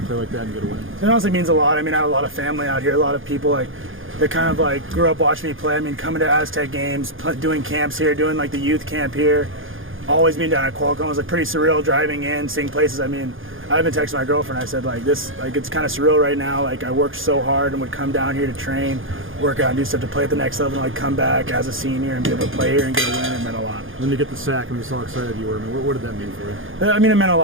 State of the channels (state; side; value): late; left; 0.59 ms